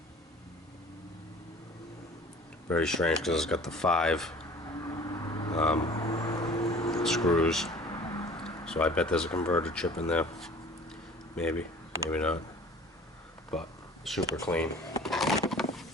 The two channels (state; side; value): normal; both; correlation 0.46